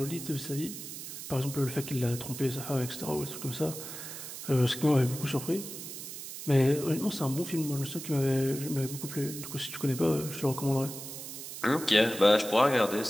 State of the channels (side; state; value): right; noise; hiss, 10 dB below the sound